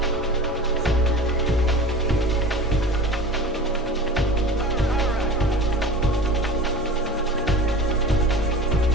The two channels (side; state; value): both; normal; correlation 0.37